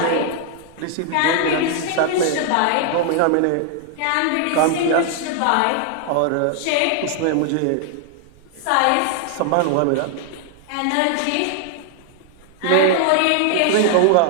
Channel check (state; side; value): different; both; correlation 0.00